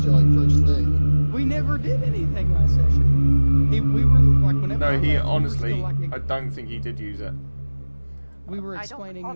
it like first thing. We never did anything last session. We were like whenever. No, I he left, honestly, we were, still, I don't think he did use it. we were I don't explaining recall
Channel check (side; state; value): both; inverted; correlation -1.00